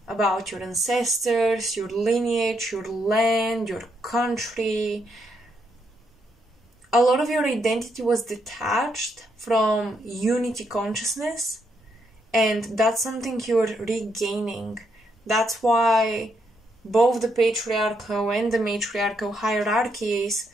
about your ancestors, your lineage, your land, your country. A lot of your identity was detached from unity consciousness, and that's something you're regaining. That's why both the patriarchal and the matriarchal hierarchies,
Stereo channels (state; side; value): normal; both; correlation 0.77